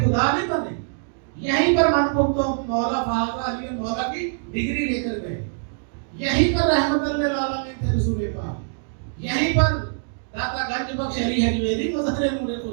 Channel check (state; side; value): silent; left; digital silence